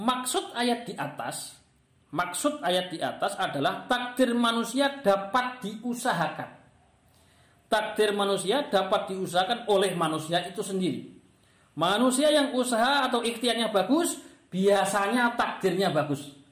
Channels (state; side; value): identical; both; correlation 1.00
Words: ayat di atas adalah takdir manusia dapat diusahakan. Takdir manusia dapat diusahakan oleh manusia itu sendiri. Manusia yang usaha atau ikhtiarnya bagus, biasanya takdirnya bagus.